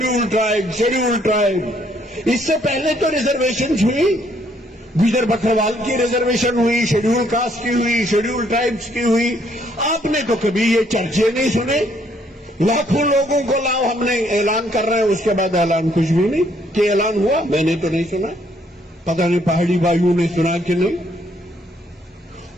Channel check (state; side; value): normal; both; correlation 0.68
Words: ٹرائب. اس سے پہلے تو ریزرویشن ہوئی, گجر بکروال کی ریزرویشن ہوئی, شیڈیول کاسٹ کی ہوئی, شیڈیول ٹرائبس کی ہوئی. آپ نے تو کبھی یہ چرچے نہیں سنے. لاکھوں لوگوں کو لاؤ, ہم نے اعلان کر رہے ہیں, اس کے بعد اعلان کچھ بھی نہیں. کہ اعلان ہوا میں نے تو نہیں سنا, پتہ نہیں پہاڑی بھائیوں نے سنا کہ نہیں.